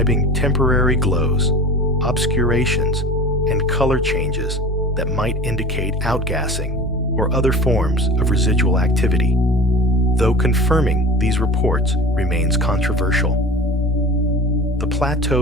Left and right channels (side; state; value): both; normal; correlation 0.36